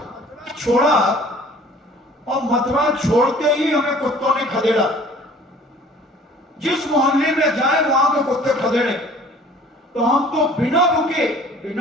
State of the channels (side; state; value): both; normal; correlation 0.50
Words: छोड़ा, और मथुरा छोड़ते ही हमें कुत्तों ने खदेड़ा। जिस मोहल्ले में जाए वहां के कुत्ते खदेड़े। तो हम तो बिना रुके,